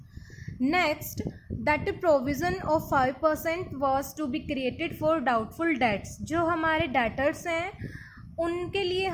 Next, that provision of 5% was to be created for doubtful debts. जो हमारे डेटर्स हैं उनके लिए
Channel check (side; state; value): both; identical; correlation 1.00